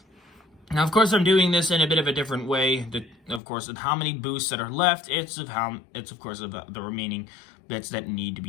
Now, of course, I'm doing this in a bit of a different way. Of course, of how many boosts that are left, it's of course of the remaining bits that need to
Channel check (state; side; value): drops out; right; at 3.4 s